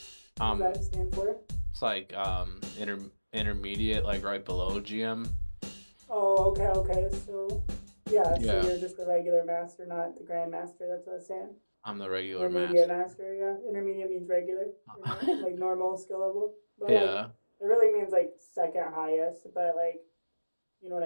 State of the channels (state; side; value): inverted; both; correlation -1.00